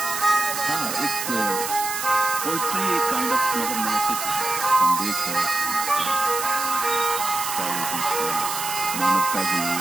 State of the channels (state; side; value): noise; right; hiss, 4 dB below the sound